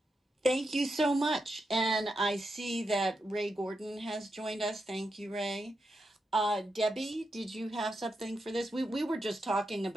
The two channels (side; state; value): both; normal; correlation 0.86